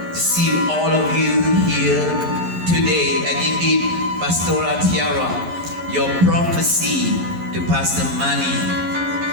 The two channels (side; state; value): left; late; 11 ms